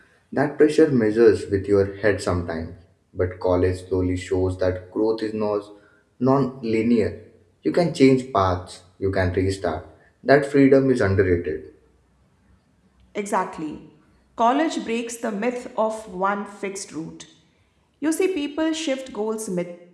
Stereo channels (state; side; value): identical; both; correlation 1.00